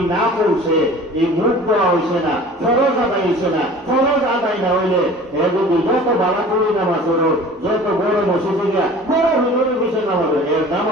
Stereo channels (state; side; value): normal; both; correlation 0.43